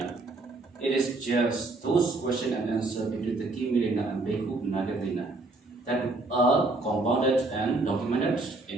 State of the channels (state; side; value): quieter; left; 3.2 dB